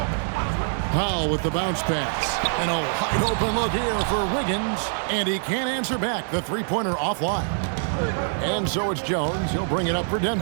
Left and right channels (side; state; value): left; silent; 62 dB below the other